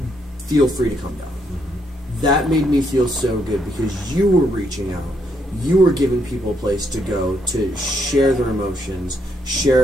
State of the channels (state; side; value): normal; both; correlation 0.75